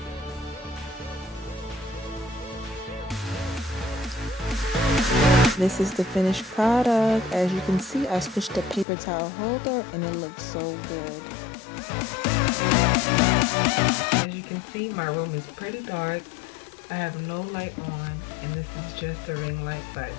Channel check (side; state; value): right; drops out; at 8.8 s